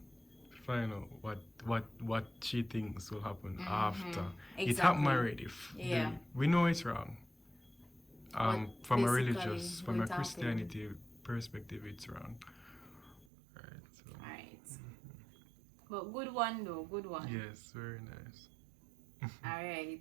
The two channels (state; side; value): drops out; left; at 13.2 s